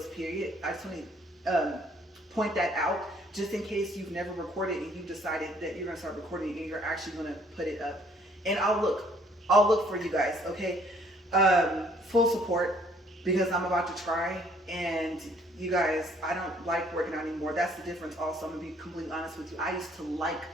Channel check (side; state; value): both; normal; correlation 0.62